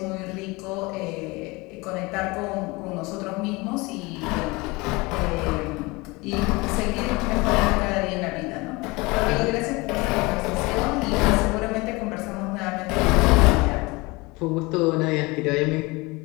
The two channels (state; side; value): quieter; right; 24.4 dB